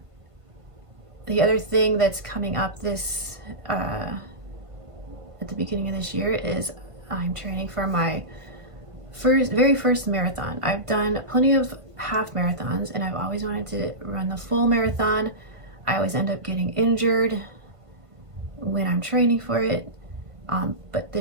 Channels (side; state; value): left; late; 1.5 ms